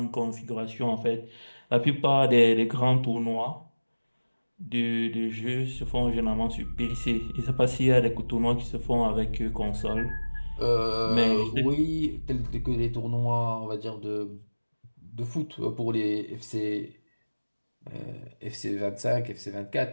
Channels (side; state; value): both; inverted; correlation -1.00